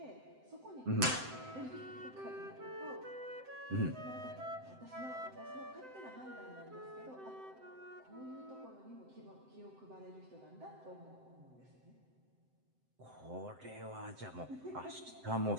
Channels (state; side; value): late; left; 7.8 ms